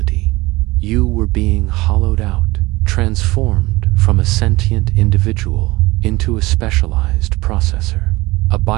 You were being hollowed out, transformed from a sentient individual into a specialized processor, a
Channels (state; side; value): quieter; left; 20.9 dB